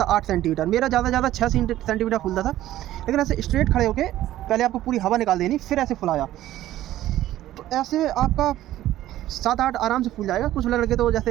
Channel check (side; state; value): left; quieter; 14.0 dB